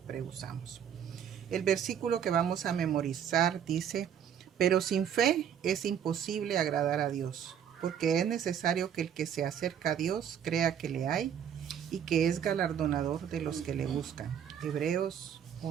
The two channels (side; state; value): left; quieter; 8.7 dB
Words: usamos. El versículo que vamos a memorizar dice: pero sin fe es imposible agradar a Dios, porque es necesario que el que se acerca a Dios crea que le hay y que es galardonador de los que le buscan. Hebreos